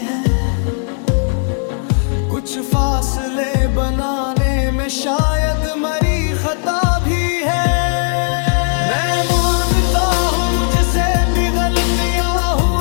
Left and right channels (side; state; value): right; silent; 59 dB below the other